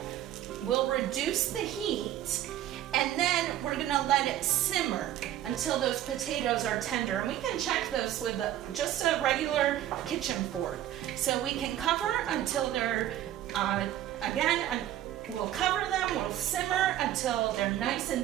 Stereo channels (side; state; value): left; quieter; 12.6 dB